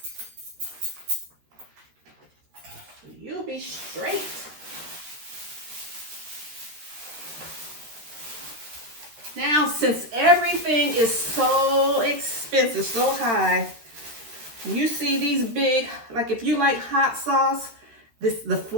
You'll be straight. Now, since everything is so expensive, so high, you see these big, like if you like hot sauce, the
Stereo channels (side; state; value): left; late; 13 ms